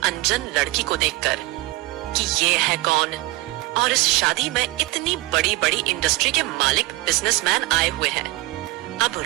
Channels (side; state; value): left; quieter; 20.0 dB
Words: लड़की को देखकर कि ये है कौन, और इस शादी में इतनी बड़ी बड़ी इंडस्ट्री के मालिक बिजनेसमैन आए हुए हैं। अब